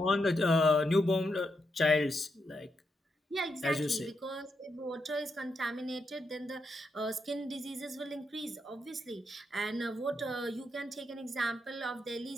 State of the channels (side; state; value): both; normal; correlation 0.82